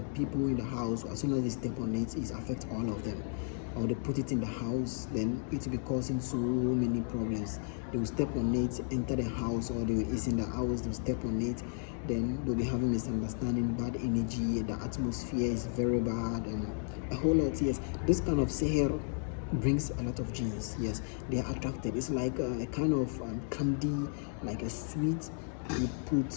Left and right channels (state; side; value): silent; right; 55 dB below the other